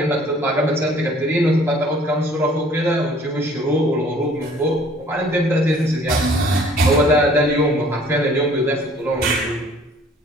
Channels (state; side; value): normal; both; correlation 0.55